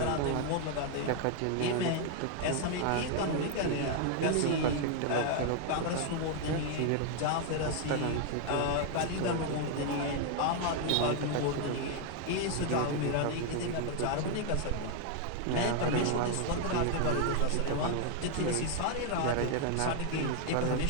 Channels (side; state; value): both; different; correlation 0.00